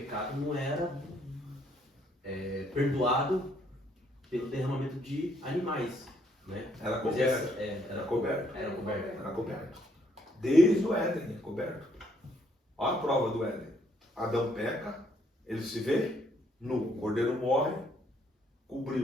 não era perdoado pelo derramamento de animais. Né? Era Moisés, coberto. era coberto. Era coberto. Era coberto. Desde o Éden é coberto. Olha a prova do Éden. Adão peca, ele se vê nu. O cordeiro morre,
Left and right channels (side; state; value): both; normal; correlation 0.69